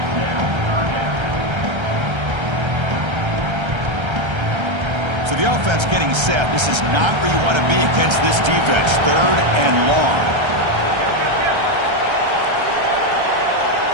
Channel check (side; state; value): left; late; 1.3 ms